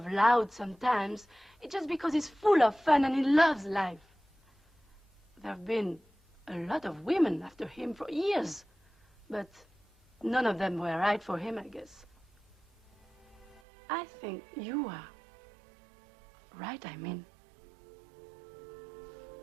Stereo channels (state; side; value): drops out; left; at 13.6 s